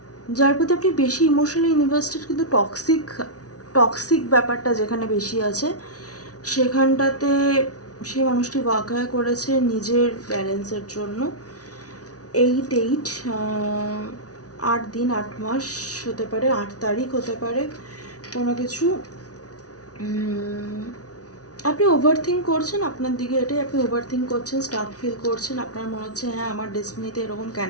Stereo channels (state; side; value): late; right; 0.68 ms